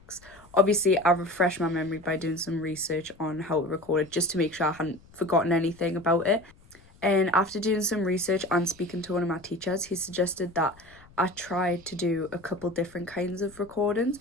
Obviously, I refreshed my memory by doing some research on how it recorded just to make sure I hadn't forgotten anything about it. And after doing some research and speaking to one of my teachers, he suggested that I tried to do a couple different kinds of recordings.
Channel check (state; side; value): noise; left; rumble, 26 dB below the sound